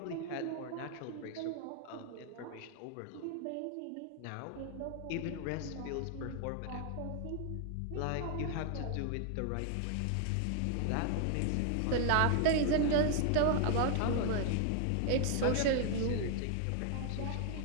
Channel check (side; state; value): both; different; correlation 0.00